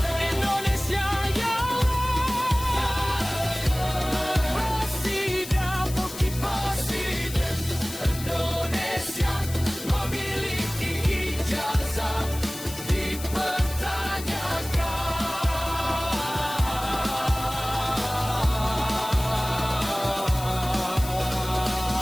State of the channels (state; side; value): noise; left; hiss, 12 dB below the sound